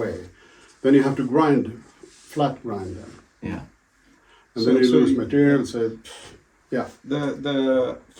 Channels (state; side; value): identical; both; correlation 1.00